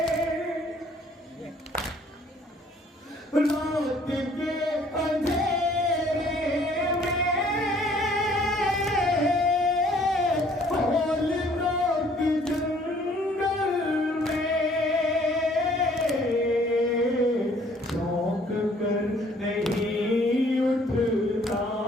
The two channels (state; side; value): normal; both; correlation 0.59